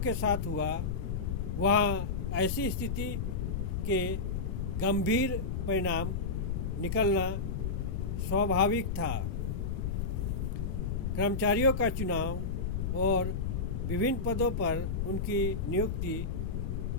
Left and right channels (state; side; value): noise; left; rumble, 1 dB below the sound